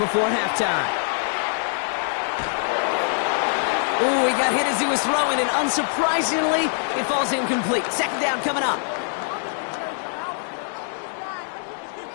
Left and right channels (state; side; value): silent; right; digital silence